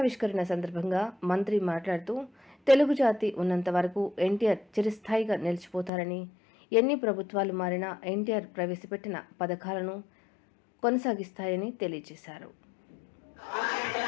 సందర్భంగా మంత్రి మాట్లాడుతూ తెలుగు జాతి ఉన్నంత వరకు ఎన్టీఆర్ చిరస్థాయిగా నిలిచిపోతారని, ఎన్ని ప్రభుత్వాలు మారినా ఎన్టీఆర్ ప్రవేశపెట్టిన పథకాలను కొనసాగిస్తాయని తెలియజేశారు.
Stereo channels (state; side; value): drops out; right; at 5.9 s